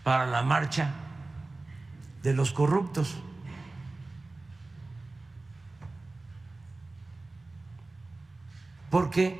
para la marcha de los corruptos. Porque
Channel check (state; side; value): quieter; left; 3.2 dB